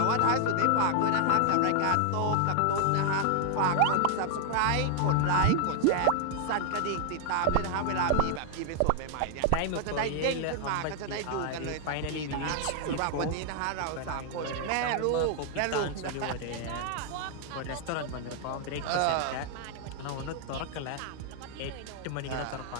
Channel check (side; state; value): both; different; correlation 0.00